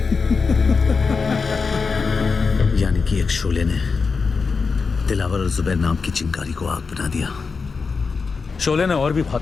यानी कि एक शोले ने दिलावर और जुबैर नाम की चिंगारी को आग बना दिया। शोले ने और भी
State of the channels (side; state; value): right; quieter; 4.9 dB